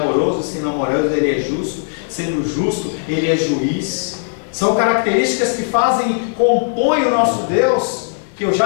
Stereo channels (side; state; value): right; silent; digital silence